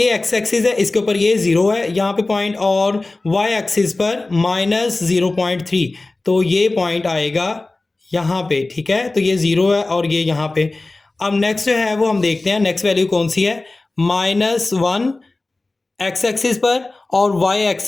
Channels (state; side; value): quieter; right; 3.1 dB